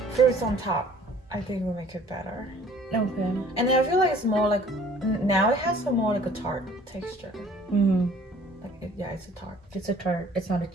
fruits on top. I think will make it better. Okay. And then I feel like it's more like, now it has some more like a tart texture. Like yeah, it's a tart. It's a tart. It's not a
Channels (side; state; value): both; normal; correlation 0.53